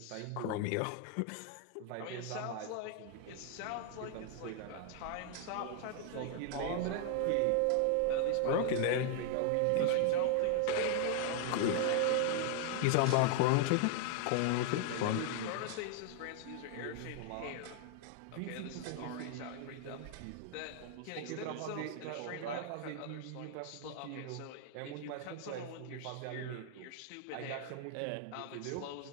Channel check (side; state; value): both; different; correlation 0.00